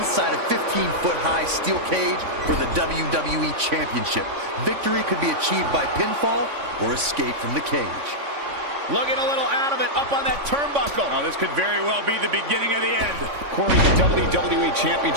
a 15-foot-high steel cage for the WWE Championship. Victory could be achieved by pinfall or escape from the cage. Looking a little out of it, up on that turnbuckle. Oh, this could very well be the beginning of the end. Corey, the WWE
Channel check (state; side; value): late; left; 3.5 ms